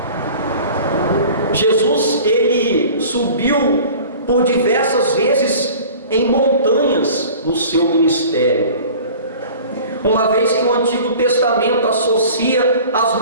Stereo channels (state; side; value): inverted; both; correlation -0.43